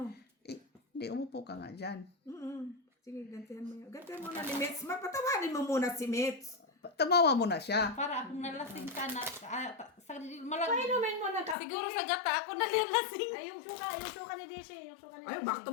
Hindi, umupo ka nga dyan. Sige, gantihan mo yun. Gantihan mo na ni Mitz. Mapatawarin mo muna si Mitz. Tamawa mo na siya. Para akong nalasing ka na. Malag. Painumin mo na kape. Siguro sa gata ako nalilasing. Ay, yung suka ni DC. Ay, bakto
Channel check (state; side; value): drops out; right; at 11.6 s